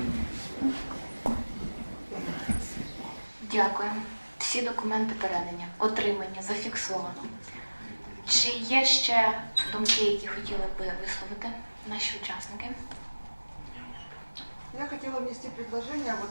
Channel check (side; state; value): both; inverted; correlation -1.00